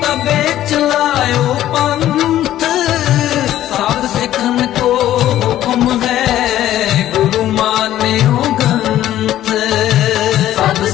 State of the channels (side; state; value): right; quieter; 13.0 dB